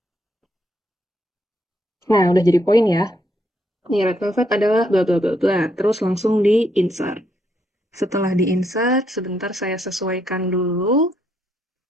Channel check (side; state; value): both; normal; correlation 0.75